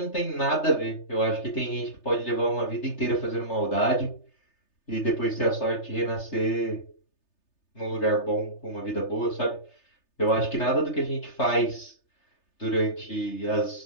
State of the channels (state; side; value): late; right; 3.3 ms